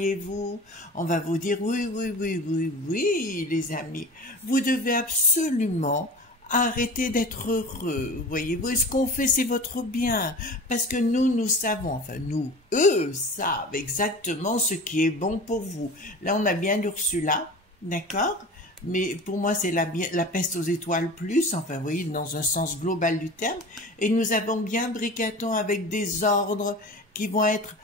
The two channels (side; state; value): both; normal; correlation 0.36